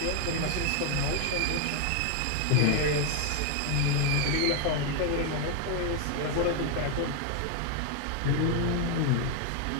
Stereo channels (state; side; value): different; both; correlation 0.01